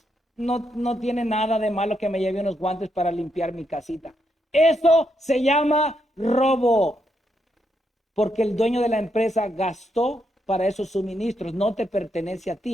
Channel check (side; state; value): both; normal; correlation 0.79